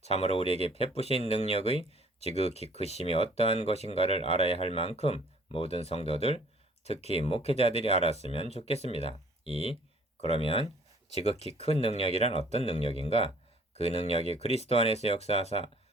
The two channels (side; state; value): both; normal; correlation 0.56